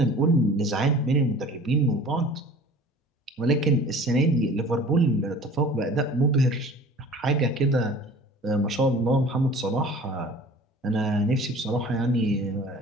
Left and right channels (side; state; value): both; normal; correlation 0.45